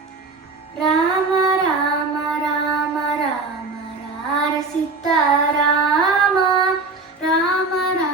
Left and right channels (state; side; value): quieter; left; 3.7 dB